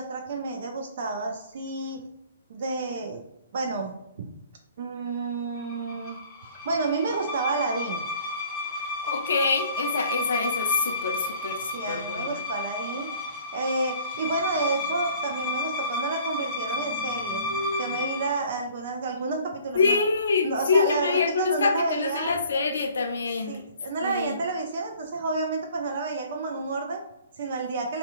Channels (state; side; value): inverted; both; correlation -0.53